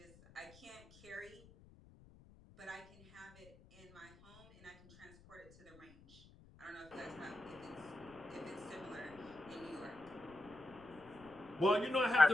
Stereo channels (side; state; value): left; noise; rumble, 23 dB below the sound